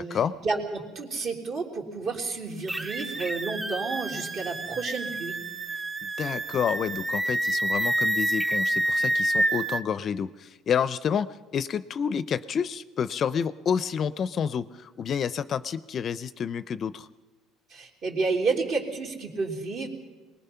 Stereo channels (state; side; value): normal; both; correlation 0.79